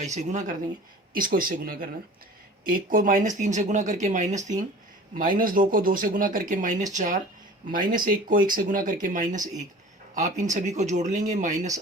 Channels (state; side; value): normal; both; correlation 0.42